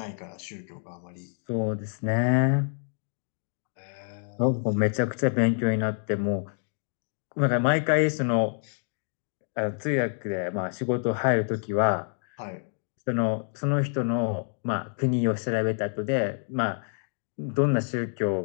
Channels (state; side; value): silent; right; digital silence